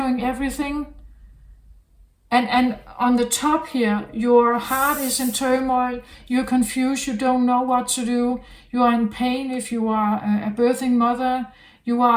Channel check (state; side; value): identical; both; correlation 1.00